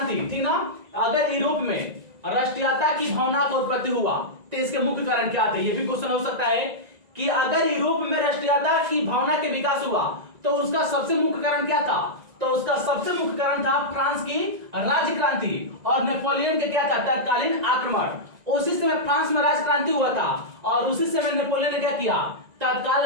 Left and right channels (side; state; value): left; late; 1.9 ms